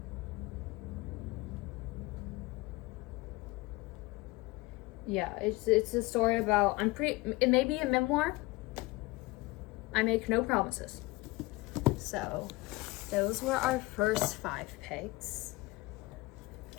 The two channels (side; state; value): right; quieter; 21.8 dB